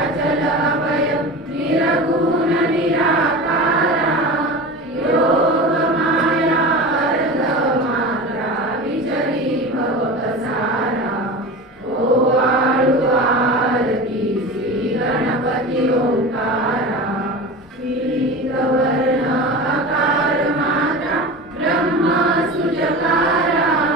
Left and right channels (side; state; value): both; normal; correlation 0.31